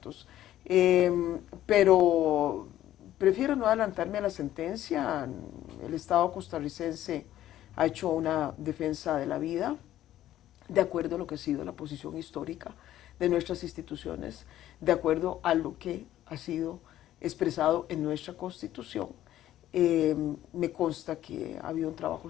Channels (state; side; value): quieter; right; 13.0 dB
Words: Pero prefiero no adelantarme a la sentencia. El Estado costarricense ha hecho una defensa de la vida de acuerdo a lo que ha sido la posición histórica de nuestras instituciones, de acuerdo a lo que ha sido expresado en nuestra Constitución. Me consta que ha habido un trabajo